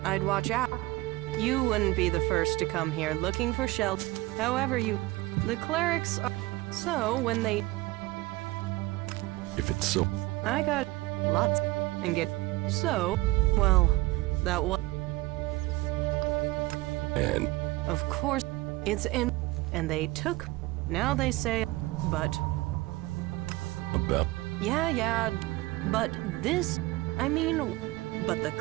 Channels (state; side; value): quieter; left; 20.2 dB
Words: I'd watch out. You wouldn't be the first to come here looking for shelter. However, the clerics are... So, when they... If it's so... I got lots and get... So, well, that was... And... Of course, it's in... And they took... Now they say... But... About... Yeah, but this... I mean... But